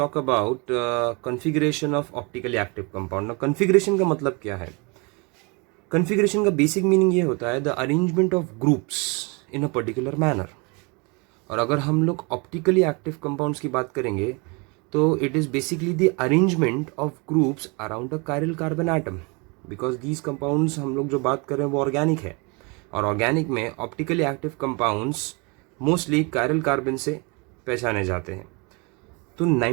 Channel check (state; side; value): quieter; left; 30.4 dB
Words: about configuration of optically active compound. ना configuration का मतलब क्या है? कॉन्फ़िगरेशन का बेसिक मीनिंग ये होता है the arrangement of groups in a particular manner. और अगर हम लोग ऑप्टिकली एक्टिव कंपाउंड्स की बात करेंगे तो it is basically the arrangement of groups around the chiral carbon atom. Because these compounds हम लोग जो बात कर रहे हैं वो ऑर्गेनिक है, और ऑर्गेनिक में optically active compounds mostly chiral carbon से पहचाने जाते हैं। तो